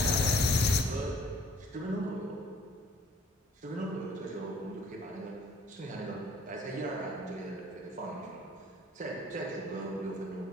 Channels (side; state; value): both; normal; correlation 0.57